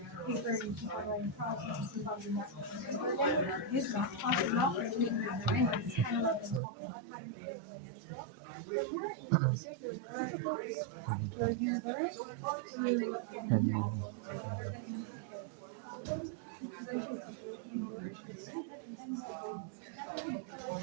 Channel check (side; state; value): left; drops out; at 6.6 s